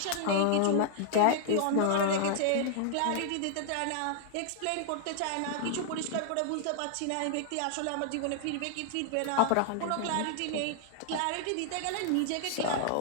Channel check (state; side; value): different; both; correlation 0.00